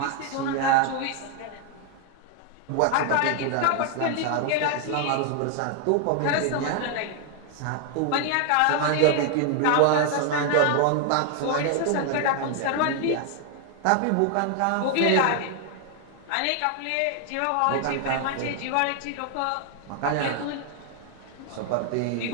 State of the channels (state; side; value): different; both; correlation 0.00